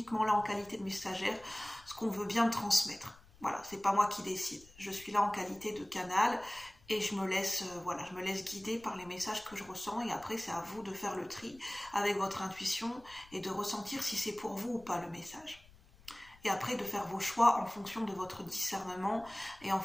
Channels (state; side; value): noise; left; rumble, 25 dB below the sound